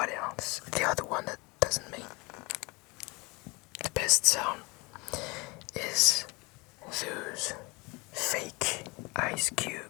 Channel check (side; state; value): right; quieter; 26.6 dB